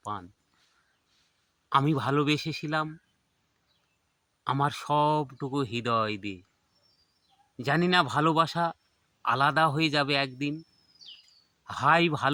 আমি ভালোবেসেছিলাম আমার সবটুকু হৃদয় দিয়ে। জানি না ভালোবাসা আলাদা হয়ে যাবে একদিন। হাই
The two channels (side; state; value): both; identical; correlation 1.00